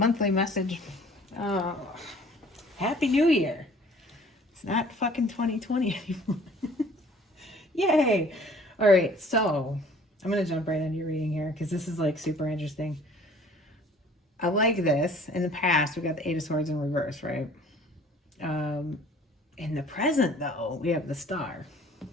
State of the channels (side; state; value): both; normal; correlation 0.52